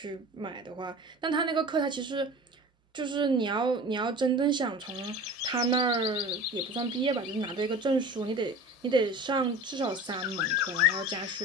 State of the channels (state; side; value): normal; both; correlation 0.38